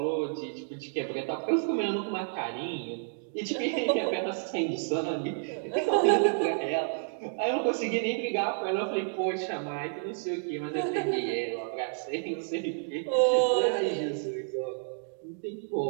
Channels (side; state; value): left; silent; digital silence